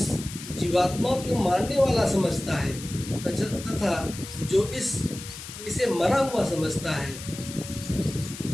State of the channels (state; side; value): noise; left; hiss, 12 dB below the sound